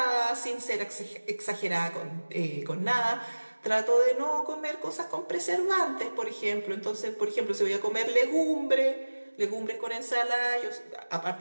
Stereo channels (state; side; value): inverted; both; correlation -1.00